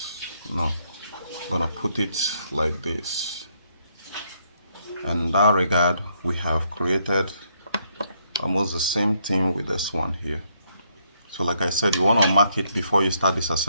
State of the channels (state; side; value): inverted; both; correlation -0.73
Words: No, I'm gonna put it like this. And in that regard, we have created almost the same thing with this one here. So like I said, you want to mark it before you start